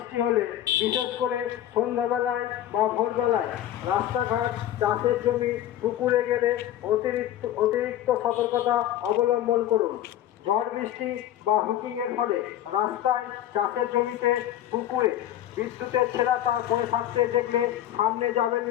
হলে বিশেষ করে সন্ধ্যাবেলায় বা ভোরবেলায় রাস্তাঘাট, চাষের জমি, পুকুরে গেলে অতিরিক্ত সতর্কতা অবলম্বন করুন। ঝড় বৃষ্টি বা হুকিংয়ের ফলে রাস্তায়, চাষের জমিতে, পুকুরে বিদ্যুতের ছেঁড়া তার পড়ে থাকতে দেখলে সামনে যাবেন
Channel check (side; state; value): right; quieter; 12.2 dB